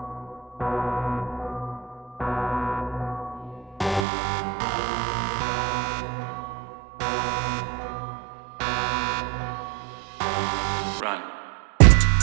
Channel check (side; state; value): left; drops out; at 4.0 s